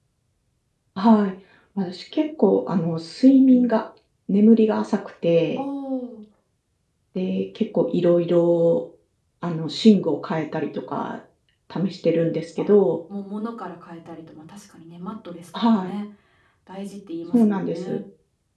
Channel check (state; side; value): identical; both; correlation 1.00